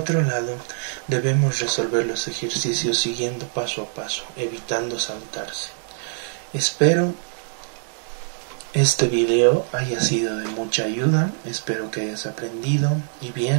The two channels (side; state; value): left; silent; digital silence